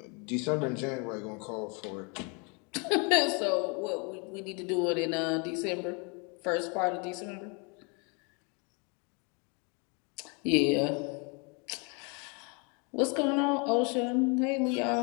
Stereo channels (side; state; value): right; quieter; 33.4 dB